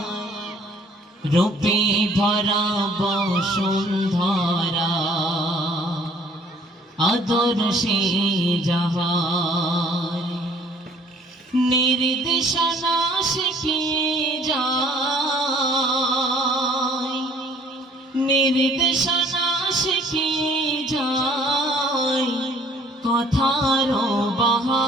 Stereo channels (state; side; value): normal; both; correlation 0.57